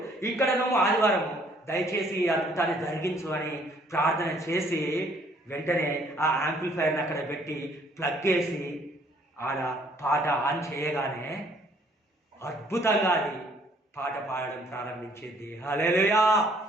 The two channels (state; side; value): normal; both; correlation 0.62